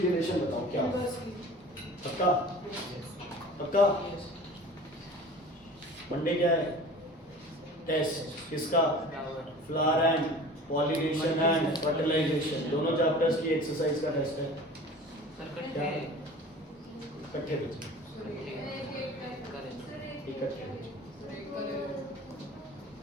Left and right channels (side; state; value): both; normal; correlation 0.41